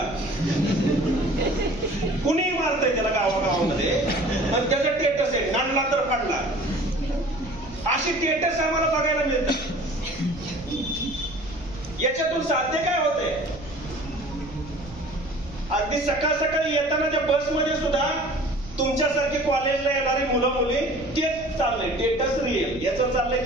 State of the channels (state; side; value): noise; right; rumble, 17 dB below the sound